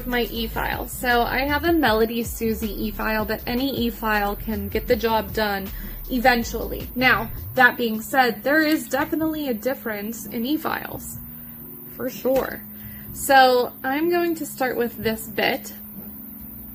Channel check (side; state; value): both; identical; correlation 1.00